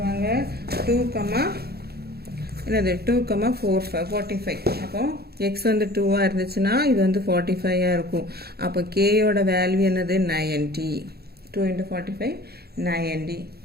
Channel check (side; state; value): left; late; 0.46 ms